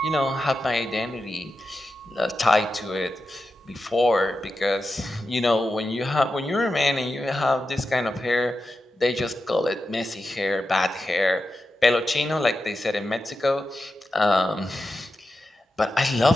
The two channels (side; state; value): both; normal; correlation 0.90